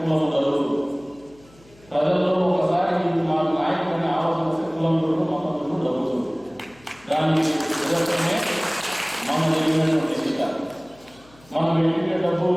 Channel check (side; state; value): left; noise; hum, 27 dB below the sound